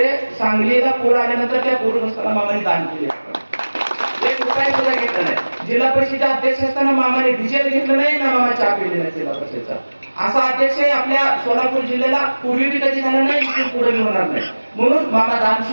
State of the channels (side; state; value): both; inverted; correlation -1.00